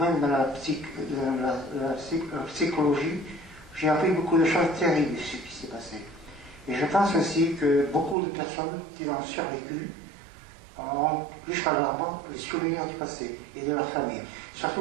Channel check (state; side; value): drops out; left; at 8.2 s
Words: dans la psychologie, j'ai appris beaucoup de choses terribles de ce qui s'est passé. Et je pense aussi que beaucoup de personnes qui ont survécu ont jusqu'à leur mort les souvenirs du passé et de leur famille.